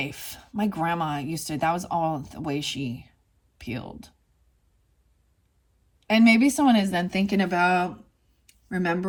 My grandma that was all the way she peeled. And maybe someone is then thinking about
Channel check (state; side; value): identical; both; correlation 1.00